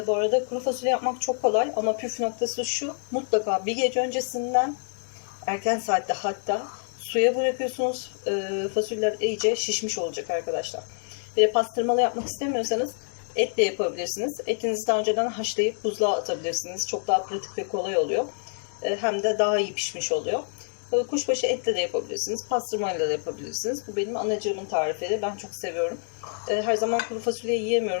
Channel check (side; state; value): right; silent; digital silence